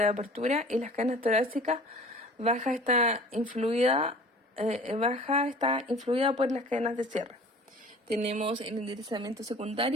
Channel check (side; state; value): both; normal; correlation 0.45